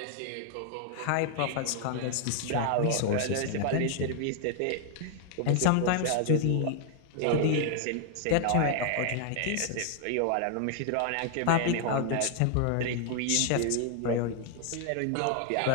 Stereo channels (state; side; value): different; both; correlation 0.00